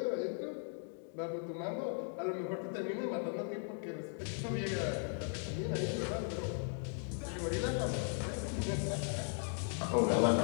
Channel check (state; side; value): silent; right; 53 dB below the other